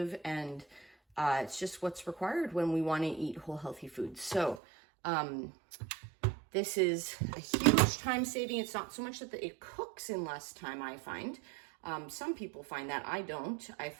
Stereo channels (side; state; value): left; drops out; at 4.6 s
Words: and it's just what's required when we want to eat whole healthy foods. So this is a huge time saving. It's not so much that it cooks in less time, I find. Some people find that. I don't. I